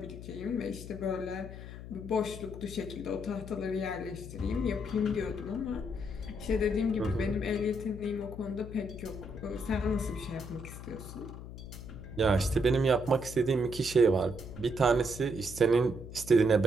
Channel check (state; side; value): noise; left; hum, 12 dB below the sound